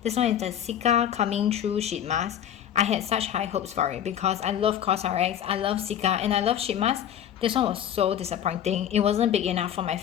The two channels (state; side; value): quieter; right; 10.0 dB